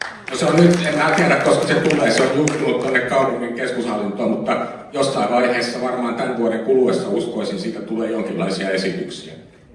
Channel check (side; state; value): both; identical; correlation 1.00